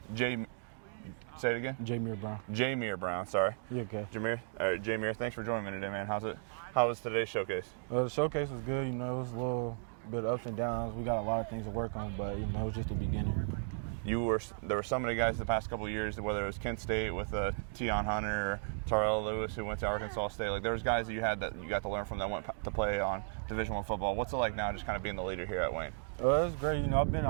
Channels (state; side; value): silent; left; digital silence